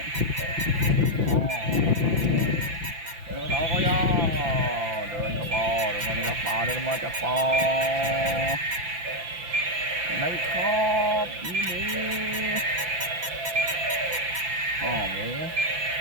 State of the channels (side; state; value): left; late; 5.8 ms